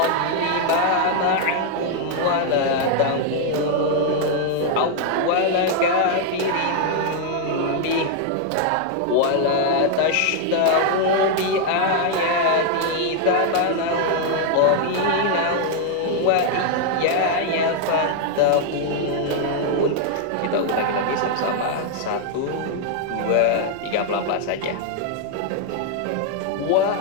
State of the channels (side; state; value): both; different; correlation 0.00